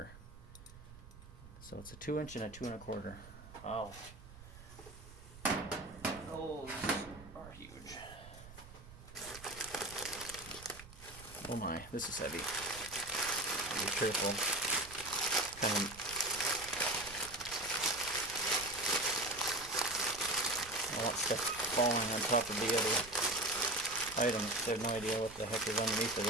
So it's a 2-inch and a 2 1/4. Wow. Those are huge. Oh my, this is heavy. Be careful. All that stuff falling on top of the other items. I have no idea what the heck is underneath of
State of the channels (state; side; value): noise; right; rumble, 17 dB below the sound